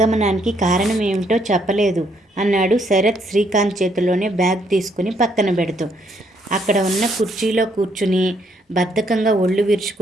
కారణం ఏమిటో చెప్పలేదు అన్నాడు శరత్ శ్రీకాంత్ చేతిలోనే బ్యాగ్ తీసుకుని పక్కన పెడుతూ. అక్కడ ఉన్న కుర్చీలో కూర్చుని బద్ధకంగా ఒళ్ళు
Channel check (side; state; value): both; normal; correlation 0.71